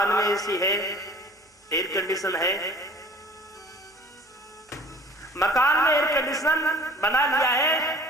में एसी है, एयर कंडीशन है, मकान में एयर कंडीशन बना लिया है,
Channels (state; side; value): normal; both; correlation 0.47